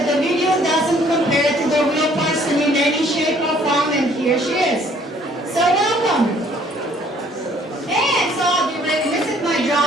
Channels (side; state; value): both; normal; correlation 0.60